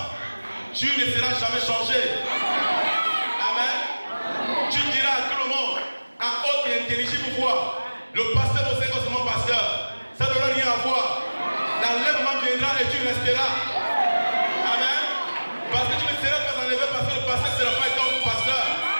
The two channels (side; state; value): both; inverted; correlation -1.00